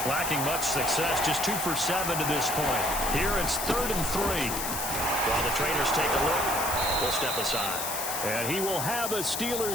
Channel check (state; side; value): noise; left; hiss, 3 dB below the sound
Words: lacking much success, just 2 for 7 to this point. Here it's 3rd and 3. While the trainers take a look, will step aside. And he will have a